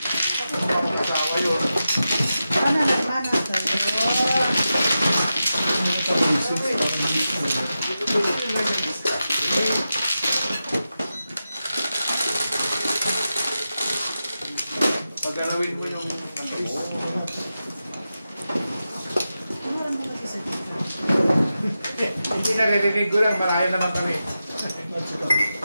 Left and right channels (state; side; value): inverted; both; correlation -0.91